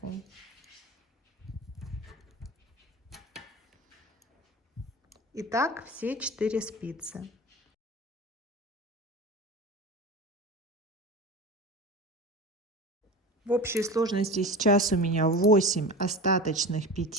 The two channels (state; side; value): normal; both; correlation 0.30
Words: Итак, все 4 спицы. В общей сложности сейчас у меня 8 остаточных